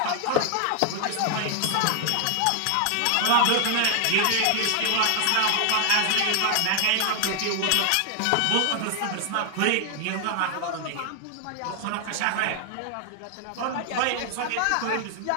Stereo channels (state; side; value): different; both; correlation 0.00